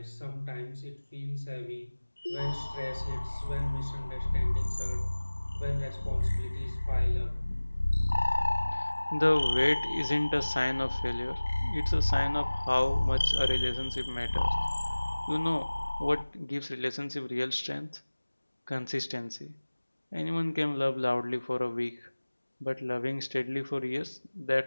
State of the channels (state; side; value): inverted; both; correlation -1.00